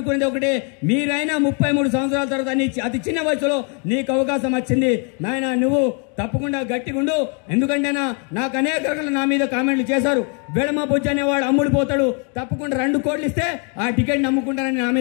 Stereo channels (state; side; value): quieter; right; 38.1 dB